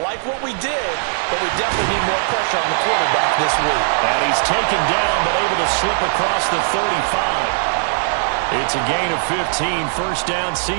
like what we did, but we definitely need more pressure on the quarterback this week. And he's taken down but able to slip across the 35. It's a gain of 15, first down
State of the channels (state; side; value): silent; left; digital silence